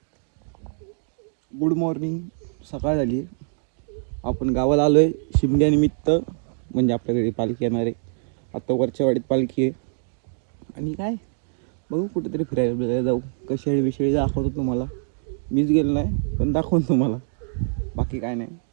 Good morning. सकाळ झाली. आपण गावाला आलोय शिमग्यानिमित्त. म्हणजे आपल्या घरी पालखी येणार आहे. आता वरच्या वाडीत पालखी आहे. आणि काय बघू कुठेतरी फिरायला जाऊ. कशाळी विषयी दाखवतो तुम्हाला. मीच गेलो नाही पण दाखवतो तुम्हाला. बाकी काय नाही.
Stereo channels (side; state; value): left; silent; digital silence